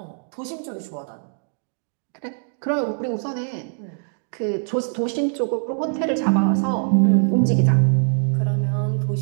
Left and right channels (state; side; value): silent; left; 63 dB below the other